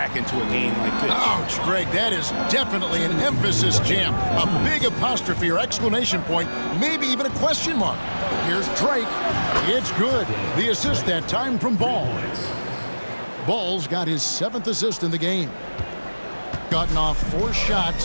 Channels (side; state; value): both; inverted; correlation -1.00